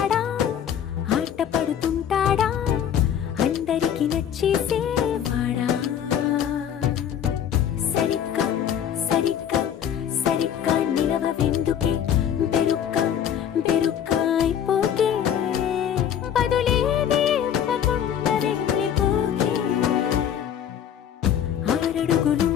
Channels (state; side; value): quieter; right; 9.3 dB